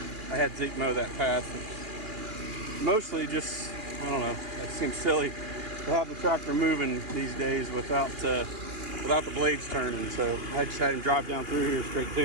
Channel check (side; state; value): left; late; 2.8 ms